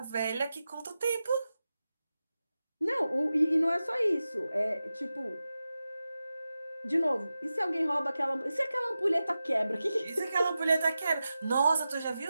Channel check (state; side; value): inverted; both; correlation -0.93